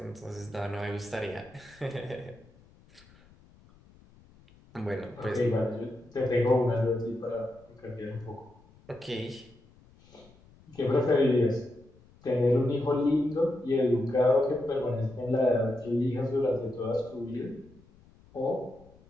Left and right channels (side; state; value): left; noise; rumble, 27 dB below the sound